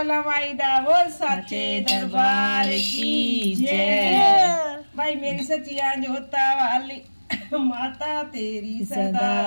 माई दा, बोल सच्चे दरबार की जय। भाई मेरी सचिया जोता वाली माता तेरी सदा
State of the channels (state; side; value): inverted; both; correlation -1.00